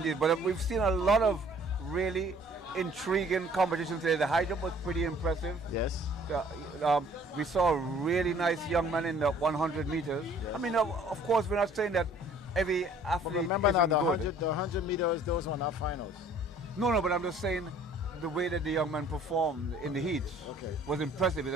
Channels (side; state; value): both; normal; correlation 0.55